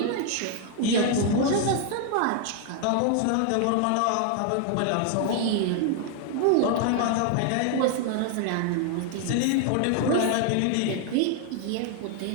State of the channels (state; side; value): different; both; correlation 0.00